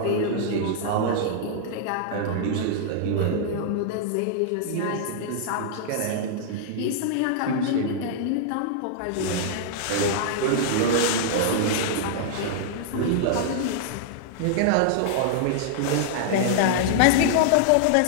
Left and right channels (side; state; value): both; different; correlation -0.01